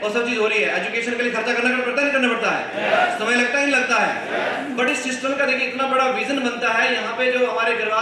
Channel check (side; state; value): both; identical; correlation 1.00